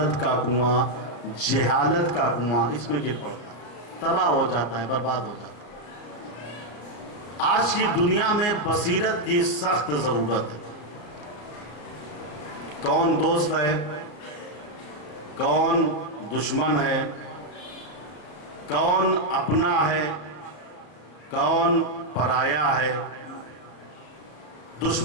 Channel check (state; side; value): late; right; 33 ms